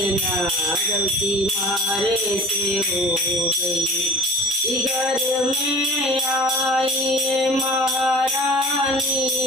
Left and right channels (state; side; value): normal; both; correlation 0.39